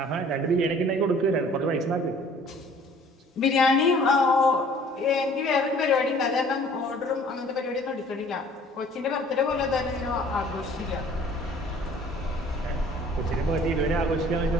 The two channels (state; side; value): normal; both; correlation 0.53